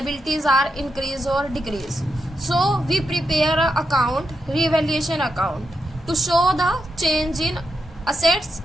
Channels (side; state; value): both; normal; correlation 0.85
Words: are increase or decrease. So we prepare a account, revaluation account, to show the change in assets